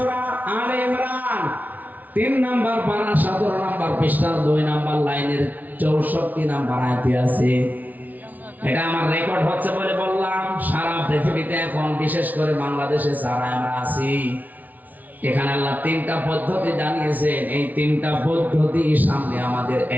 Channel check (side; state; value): left; late; 0.077 ms